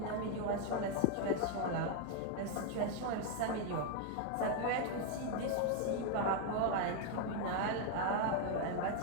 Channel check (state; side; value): different; both; correlation 0.00